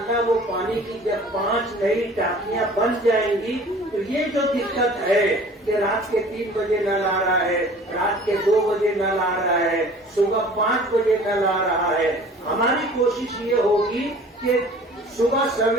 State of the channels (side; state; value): both; normal; correlation 0.47